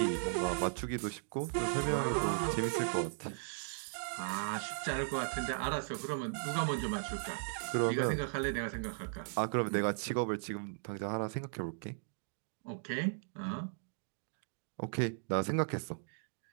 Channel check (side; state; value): left; silent; digital silence